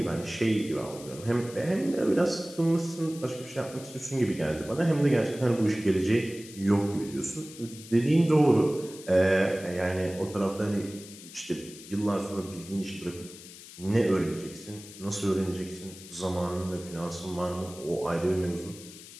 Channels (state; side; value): noise; left; hiss, 17 dB below the sound